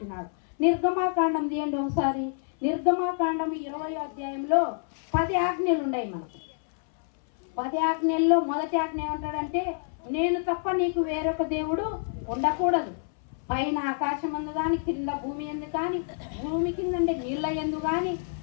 నిర్గమాకాండం తీయండి ఒకసారి. నిర్గమాకాండం 20వ అధ్యాయంలో 10 ఆజ్ఞలు ఉన్నాయి మనకు. 10 ఆజ్ఞల్లో మొదటి ఆజ్ఞ ఏమంటాడంటే, నేను తప్ప నీకు వేరొక దేవుడు ఉండకూడదు. పైన ఆకాశం అందు కానీ, కింద భూమి ఎందు కానీ, భూమి కింద నీళ్ళ ఎందు కానీ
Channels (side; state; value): right; silent; 60 dB below the other